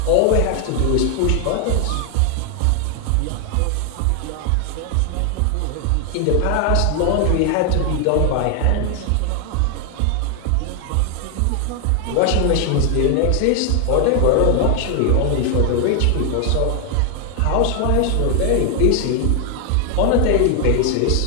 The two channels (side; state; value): both; different; correlation 0.00